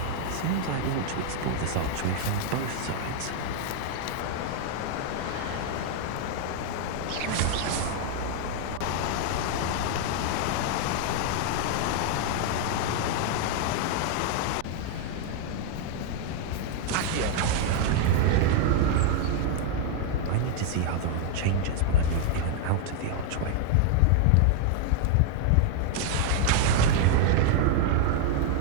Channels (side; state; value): both; different; correlation 0.00